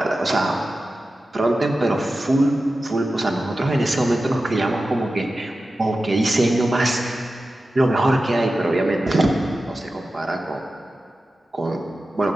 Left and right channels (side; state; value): both; normal; correlation 0.93